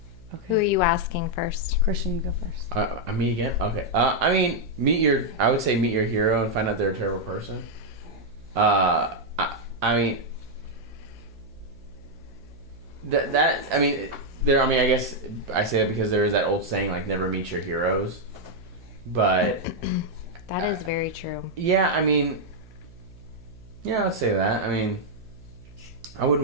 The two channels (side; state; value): right; noise; hum, 22 dB below the sound